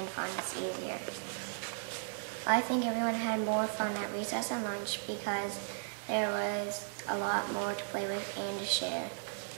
find us easier. I think everyone had more fun at recess and lunch because there was a lot more to play with and to share.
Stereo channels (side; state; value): left; silent; digital silence